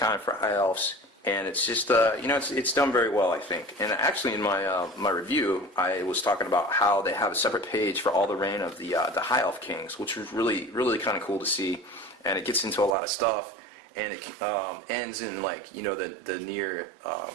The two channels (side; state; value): left; drops out; at 12.9 s